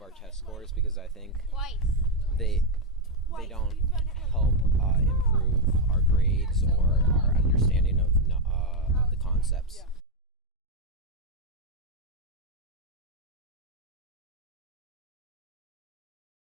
our test scores, because I think they don't help improve our grades or our understanding of the concepts.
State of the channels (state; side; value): normal; both; correlation 0.03